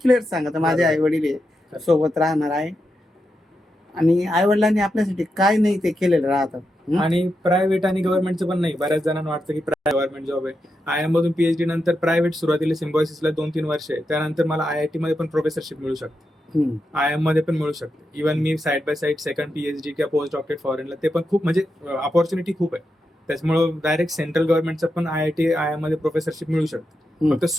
सांगा माझे आई वडील सोबत राहणार आहे, आणि आई वडिलांनी आपल्यासाठी काय नाही ते केलेलं राहतं. आणि प्रायव्हेट आणि गव्हर्नमेंटचं पण नाही. बऱ्याच जणांना वाटतं की गव्हर्नमेंट जॉब आहे. IIM मधून PhD नंतर प्रायव्हेट सुरुवातीला सिम्बॉयसिसला 2-3 वर्ष आहे, त्यानंतर मला IIT मध्ये पण प्रोफेसरशिप मिळू शकते, IIM मध्ये पण मिळू शकते. Even me side by side second PhD किंवा पोस्ट डॉक्टरेट फॉरेनला, ते पण खूप म्हणजे अपॉर्च्युनिटी खूप आहे. त्याच्यामुळे डायरेक्ट सेंट्रल गव्हर्नमेंटचं पण IIM मध्ये प्रोफेसरशिप मिळू शकते. फक्त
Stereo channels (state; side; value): normal; both; correlation 0.86